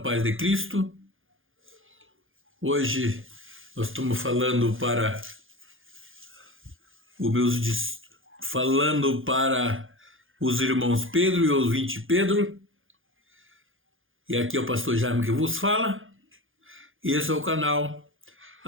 de Cristo. Hoje nós estamos falando para os irmãos Pedro e os 20 Pedro. E aqui é o pastor Jaime que vos fala. Esse é o canal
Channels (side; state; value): left; late; 0.58 ms